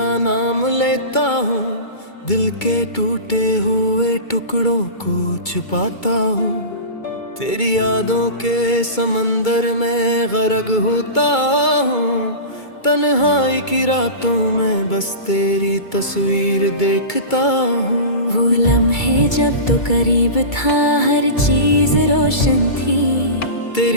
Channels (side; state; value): right; late; 2.3 ms